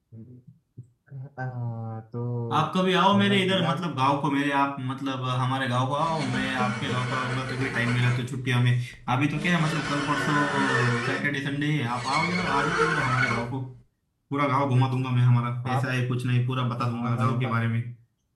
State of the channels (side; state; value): both; identical; correlation 1.00